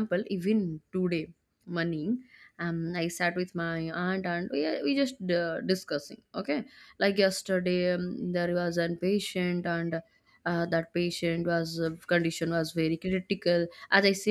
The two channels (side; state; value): both; identical; correlation 1.00